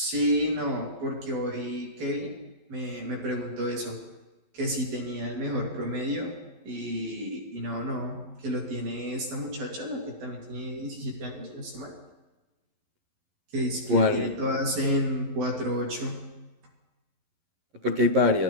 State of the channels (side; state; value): left; late; 11 ms